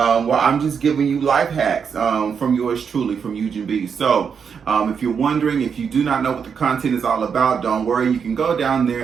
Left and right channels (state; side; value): quieter; left; 6.6 dB